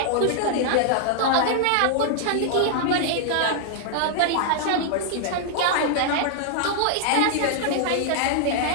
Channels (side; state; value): both; different; correlation -0.01